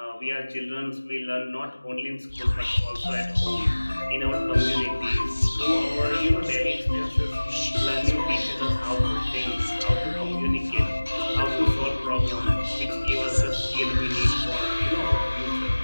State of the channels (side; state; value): both; inverted; correlation -1.00